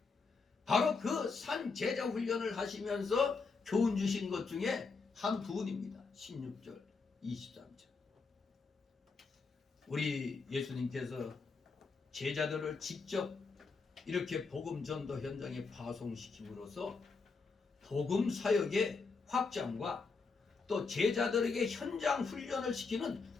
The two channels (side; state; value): right; quieter; 4.5 dB